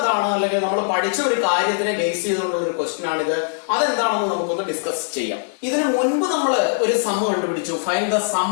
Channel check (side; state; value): right; silent; digital silence